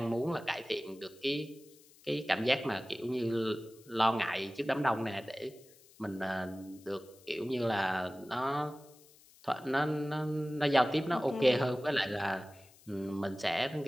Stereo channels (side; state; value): left; noise; hiss, 26 dB below the sound